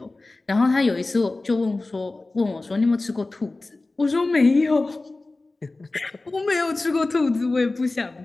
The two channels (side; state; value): right; quieter; 3.2 dB